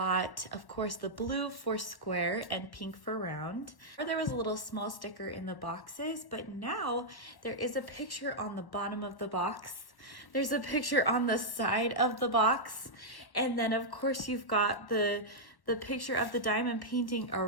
of course, the blue for square and pink for round. There was a little small sticker in the boxes, but now there is a picture on the bottom of the box. There's a picture on the side of the box, and then of course you've got the picture of the diamond painting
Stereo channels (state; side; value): late; right; 1.1 ms